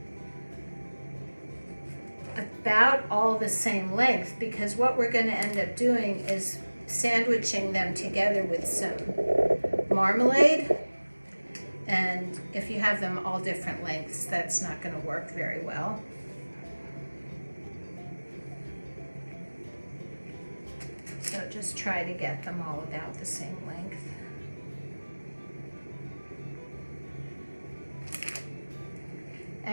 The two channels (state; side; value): inverted; both; correlation -1.00